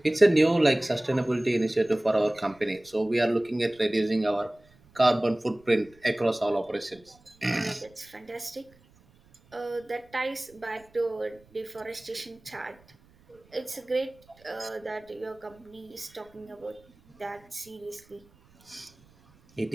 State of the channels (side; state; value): right; noise; rumble, 29 dB below the sound